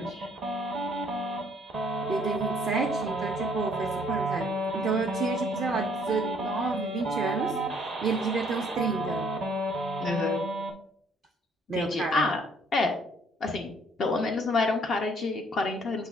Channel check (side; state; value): both; normal; correlation 0.62